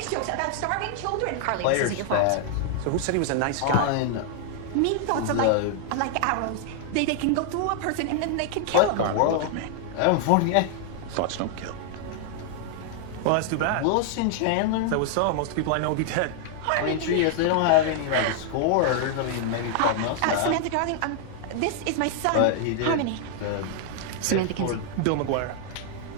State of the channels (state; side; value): different; both; correlation 0.00